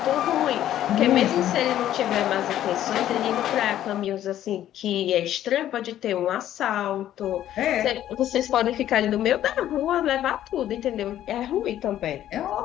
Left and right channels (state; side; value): quieter; right; 12.1 dB